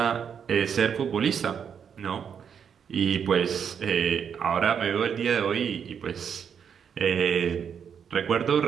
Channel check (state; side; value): quieter; left; 7.5 dB